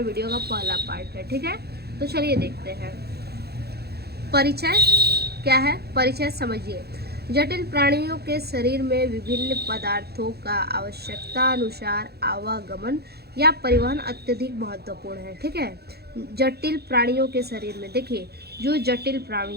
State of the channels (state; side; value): late; left; 0.47 ms